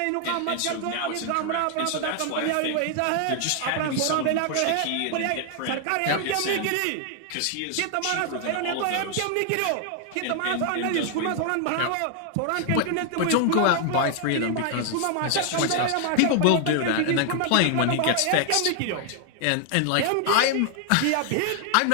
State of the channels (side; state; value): both; different; correlation 0.00